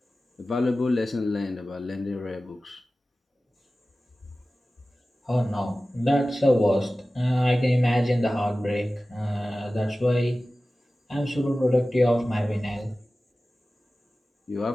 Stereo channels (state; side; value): normal; both; correlation 0.96